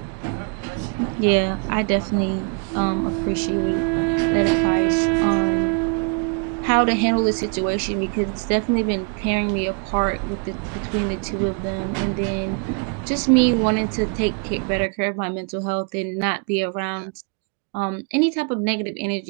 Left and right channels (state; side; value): quieter; left; 34.9 dB